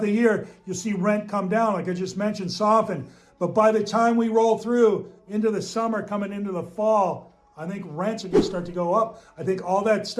the year, you'll see rent come down, like I just mentioned, soften. But by the time we roll through into the summer, coming into the fall, I think rents are going to start to go up. I think all that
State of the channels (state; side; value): identical; both; correlation 1.00